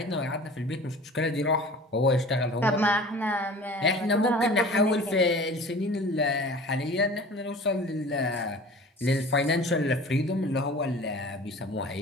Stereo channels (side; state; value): both; normal; correlation 0.42